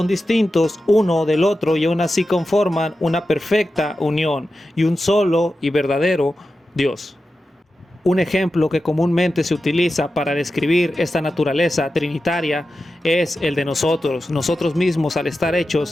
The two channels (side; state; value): both; normal; correlation 0.92